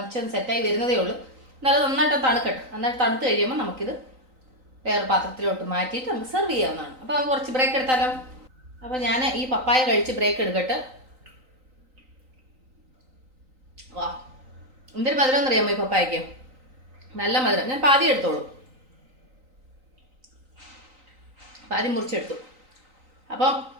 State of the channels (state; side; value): late; left; 3.9 ms